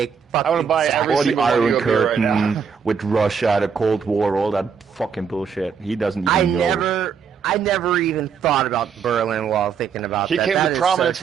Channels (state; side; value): quieter; left; 6.6 dB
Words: want to buy every All the single one Iron of you up here right Curtain now. with Russia, the Cold War, all that fucking bullshit. He doesn't even know. I never even thought about Berlin while thinking about He that. came That to is prominence